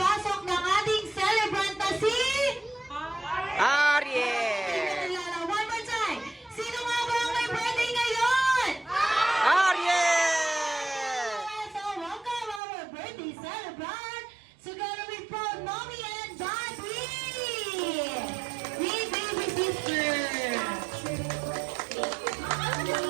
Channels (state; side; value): drops out; left; at 12.6 s